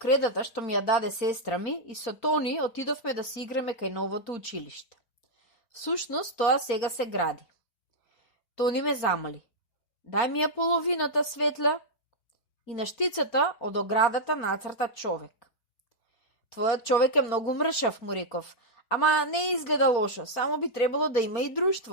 што ми ја даде сестра ми и со Тони отидовме да се играме кај новото училиште. Всушност, тоа сега се гради. Тони ме замоли. Дај ми ја половината светла и на штицата од оградата нацрта човек. Твојот човек е многу мршав, му реков, ама не изгледа лошо, само би требало да има и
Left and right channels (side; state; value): right; late; 4.3 ms